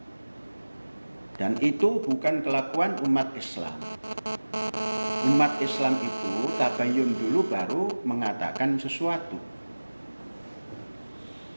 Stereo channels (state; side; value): inverted; both; correlation -1.00